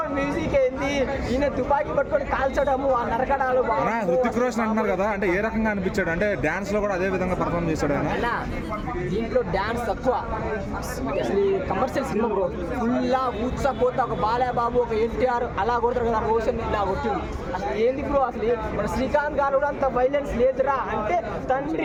మ్యూజిక్ ఏంది, ఈయన తుపాకీ పట్టుకొని కాల్చడము, ఆ నరకడాలు. హృతిక్ రోషన్ అంటున్నారు కదా, అంటే ఏ రకంగా అనిపించాడు? అంటే డాన్స్ లో కూడా అదే విధంగా పర్ఫార్మ్ చేశాడు ఆయన. దీంట్లో డాన్స్ తక్కువ, అసలు కమర్షియల్ సినిమా బ్రో. ఫుల్లా ఊత్సా పోతా, ఒక బాలయ్యబాబు ఒక ఎన్టీఆర్ అలా కొడతారు కదా, రోషన్ ఇలా కొట్టింది. అసలు ఏంది బ్రో, అసలు మన శ్రీకాంత్ గారు కూడా అంత వైలెన్స్ లేదురా అంటే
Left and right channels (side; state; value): both; identical; correlation 1.00